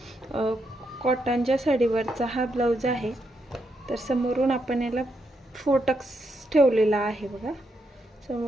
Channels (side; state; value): both; normal; correlation 0.80